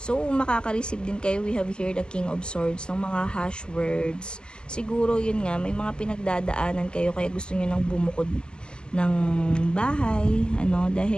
so, makaka-receive din kayo. We have here the King of Swords, ng mga hash words. Siguro, yun nga, may mga pinagdadaanan kayo, kaya gusto nyo nang bumukod ng bahay,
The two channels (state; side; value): late; right; 0.048 ms